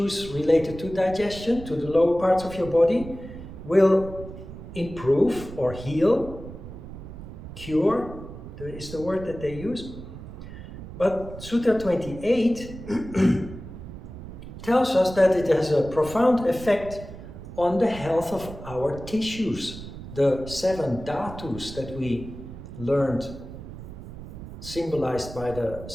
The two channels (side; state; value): right; noise; rumble, 12 dB below the sound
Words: related to digestion, to the lower parts of your body, will improve or heal, cure, is the word that they use. But Sutra 28 tells us that it has a profound effect on the health of our tissues, the 7 dhatus that we learned, symbolized by the